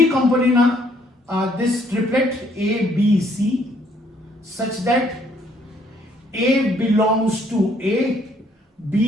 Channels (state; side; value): normal; both; correlation 0.66